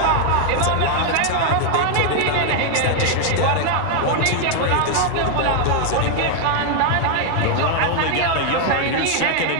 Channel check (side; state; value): both; different; correlation 0.00